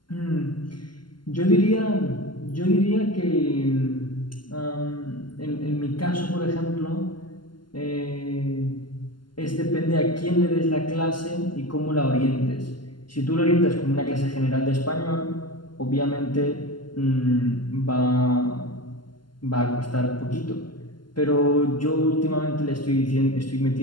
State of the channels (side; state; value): right; late; 0.71 ms